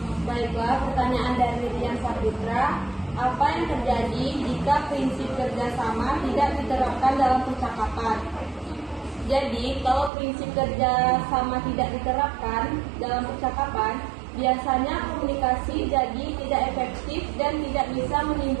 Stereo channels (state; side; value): drops out; left; at 10.1 s